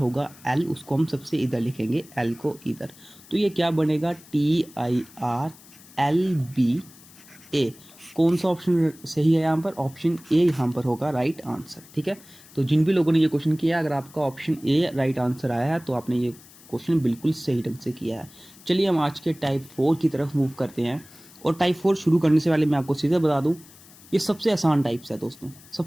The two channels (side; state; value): left; noise; hiss, 23 dB below the sound